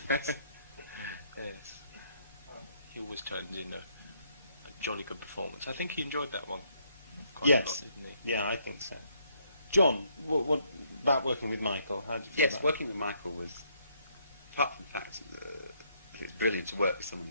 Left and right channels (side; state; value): both; inverted; correlation -0.70